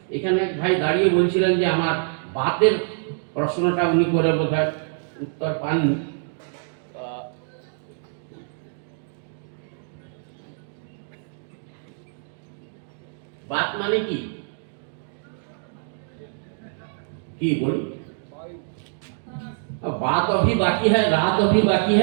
এখানে এক ভাই দাঁড়িয়ে বলছিলেন যে আমার বাতের প্রশ্নটা উনি করে বোধহয় উত্তর পাননি। बात माने की बोली? बात अभी बाकी है, रात अभी बाकी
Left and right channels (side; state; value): left; silent; digital silence